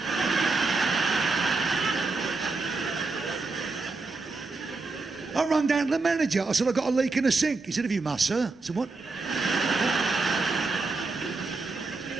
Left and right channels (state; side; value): quieter; left; 3.8 dB